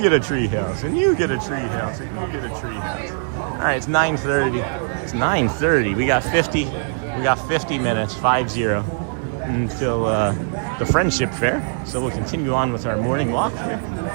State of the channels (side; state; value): left; silent; digital silence